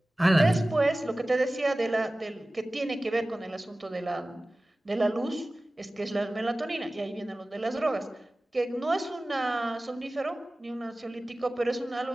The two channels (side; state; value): both; normal; correlation 0.97